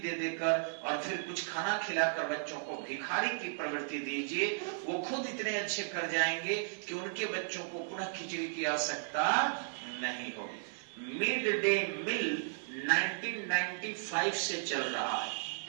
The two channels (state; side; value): silent; left; 54 dB below the other